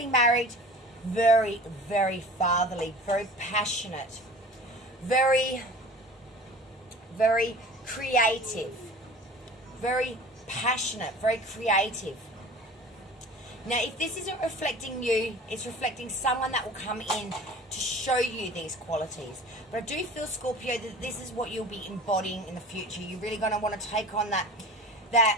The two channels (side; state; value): both; normal; correlation 0.41